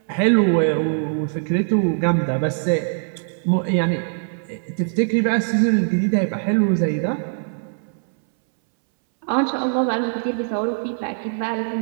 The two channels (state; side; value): silent; left; 65 dB below the other